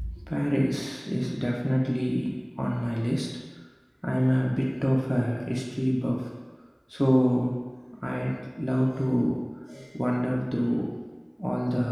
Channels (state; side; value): identical; both; correlation 1.00